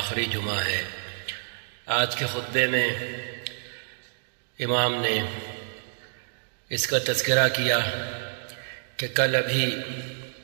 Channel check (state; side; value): silent; left; digital silence